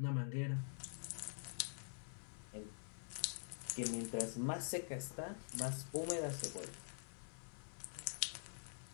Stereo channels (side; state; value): right; silent; digital silence